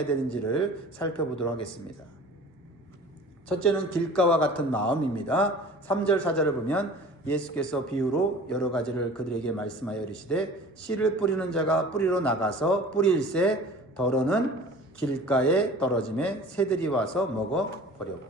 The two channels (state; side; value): normal; both; correlation 0.43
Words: 되는지를 살펴보도록 하겠습니다. 첫째는 길가와 같은 마음입니다. 3절 4절을 보면 예수께서 비유로 여러 가지를 그들에게 말씀하여 이르시되 씨를 뿌리는 자가 뿌리러 나가서 뿌릴새 더러는 길가에 떨어짐에 새들이 와서